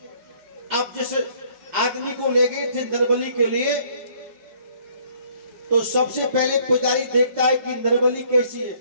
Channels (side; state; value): left; late; 4.8 ms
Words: जिस आदमी को ले गए थे नरबली के लिए, तो सबसे पहले पुजारी देखता है कि नरबली कैसी है,